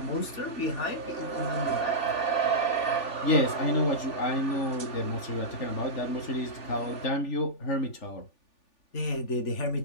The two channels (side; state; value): right; late; 3.4 ms